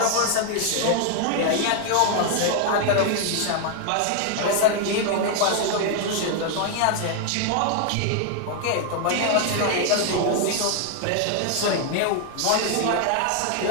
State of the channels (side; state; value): both; different; correlation 0.00